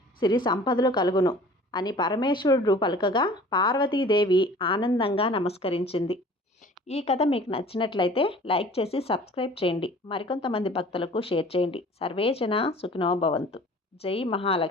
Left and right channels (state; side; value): normal; both; correlation 0.47